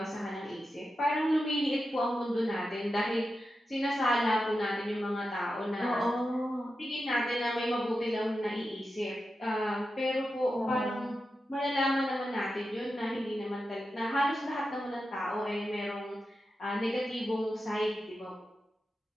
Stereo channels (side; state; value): both; normal; correlation 0.90